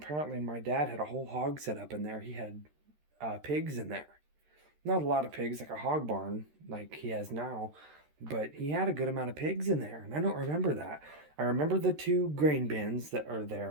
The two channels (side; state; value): left; late; 13 ms